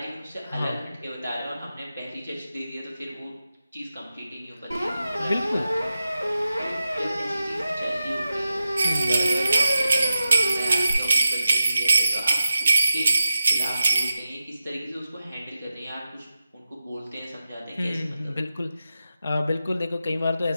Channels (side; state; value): both; inverted; correlation -0.92